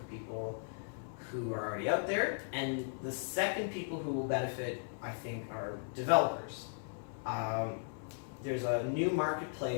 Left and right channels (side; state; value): right; silent; 53 dB below the other